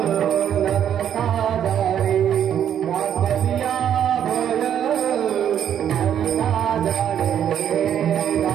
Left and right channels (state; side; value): quieter; left; 9.6 dB